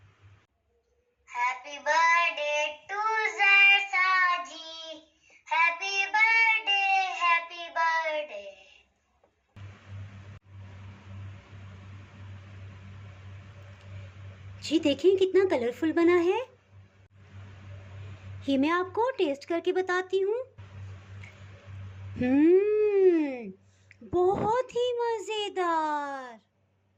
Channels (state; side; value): identical; both; correlation 1.00